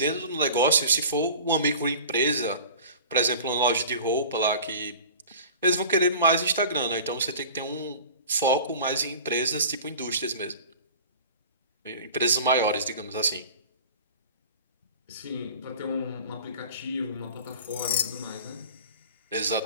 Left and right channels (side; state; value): both; inverted; correlation -0.40